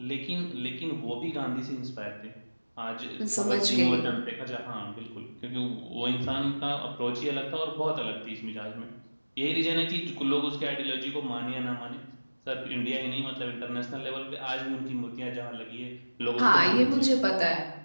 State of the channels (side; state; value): both; inverted; correlation -1.00